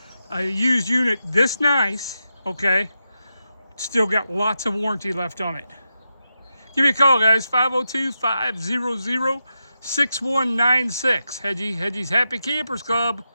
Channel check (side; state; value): both; inverted; correlation -0.87